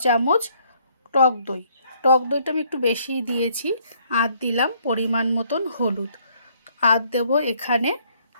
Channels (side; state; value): both; inverted; correlation -0.66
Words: চামচ টক দই। টক দইটা আমি একটু বেশিই দিয়েছি। আর দিলাম পরিমাণ মতন হলুদ, আর দেবো এখানে